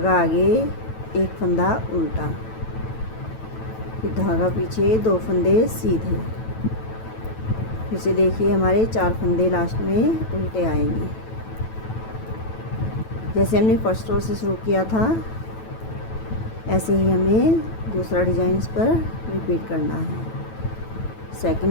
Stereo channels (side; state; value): right; late; 9.1 ms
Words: आगे, एक फंदा उल्टा, फिर धागा पीछे, 2 फंदे सीधे। फिर से देखिए हमारे 4 फंदे लास्ट में उल्टे आएंगे। जैसे हमने फर्स्ट रो से शुरू किया था ऐसे ही हमें दूसरा डिज़ाइन इस पर रिपीट करना है।